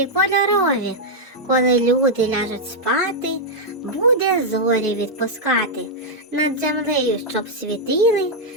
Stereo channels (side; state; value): both; normal; correlation -0.04